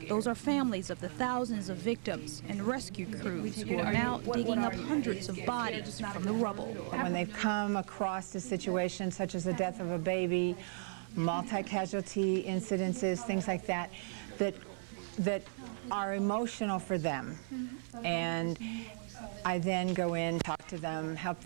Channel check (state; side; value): silent; left; 54 dB below the other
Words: Those are families of the thousands of victims and rescue crews who are now digging up hundreds of bodies from the rubble. When they've come across a situation such as the death of a baby, multi-casualty incidences, things like that, that are emotional for them. And I then go in, talk to them, help